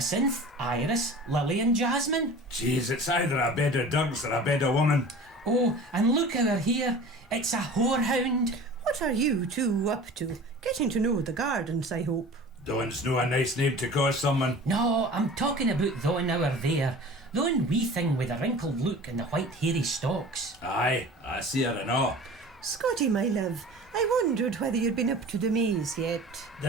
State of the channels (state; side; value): normal; both; correlation 0.40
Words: Iris, Lily and Jasmine. Jeez, it's either a bed of dogs or a bed of woman. Oh, and look over here. It's a whorehound. What are you two up to? Getting to know the gardens, I hope. Dawn's no a nice name to call someone. No, I'm talking about thon over there. Thon wee thing with the wrinkled look and the white hairy stalks. Aye, I see her and all. Scotty, my love, I wondered whether you'd been up to the maze yet.